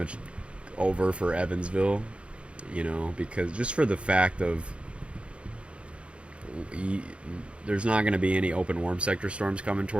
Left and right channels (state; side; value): late; left; 0.059 ms